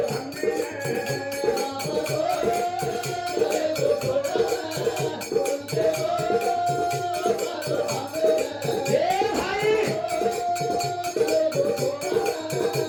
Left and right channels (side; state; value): both; identical; correlation 1.00